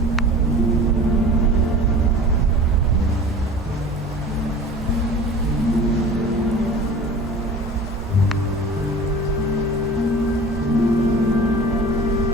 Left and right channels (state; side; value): normal; both; correlation 0.40